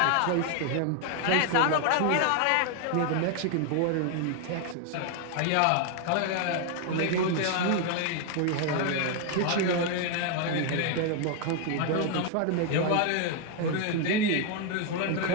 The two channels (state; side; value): different; both; correlation 0.00